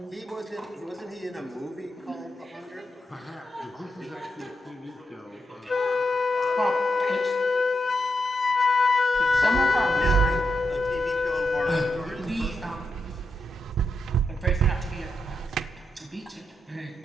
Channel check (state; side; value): normal; both; correlation 0.84